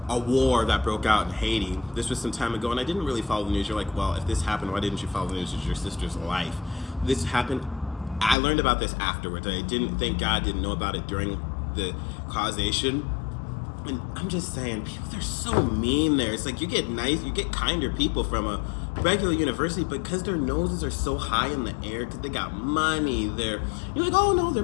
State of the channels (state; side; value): drops out; right; at 8.3 s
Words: a war that broke out in Haiti. This was some time ago, and I didn't really follow the news. You're like, well, if this happened, why didn't you follow the news? It's your sister's life. This happened. I learned about this afterwards. I didn't, thank God, didn't know about it during the causation. And I'm just saying, people, they're so mean there. It's like you get kinder people from a regular university, but because their noses are so high in the air, because they got money, you're like, oh no, they're